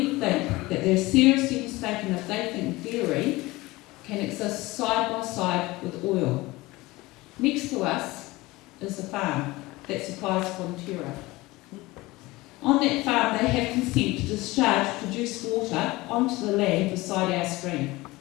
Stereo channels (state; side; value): quieter; right; 20.5 dB